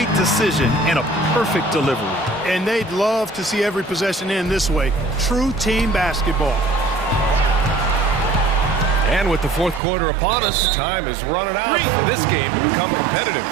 decision and a perfect delivery. And they'd love to see every possession end this way. True team basketball. And with the fourth quarter upon us, time is running out for this game to become competitive.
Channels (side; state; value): left; drops out; at 9.8 s